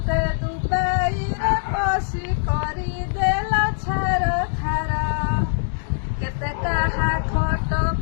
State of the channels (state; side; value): silent; right; digital silence